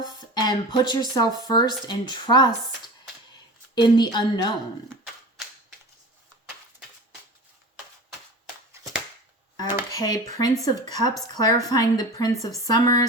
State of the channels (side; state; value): both; normal; correlation 0.34